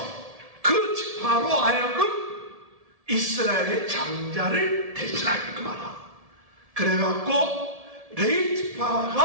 그 지파로 하여금 이스라엘의 장자를 대신하게끔 하라. 그래갖고 레위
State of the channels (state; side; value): late; left; 1.7 ms